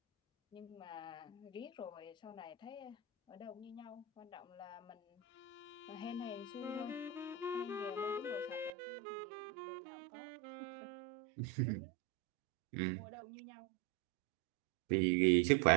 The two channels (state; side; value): drops out; left; at 8.7 s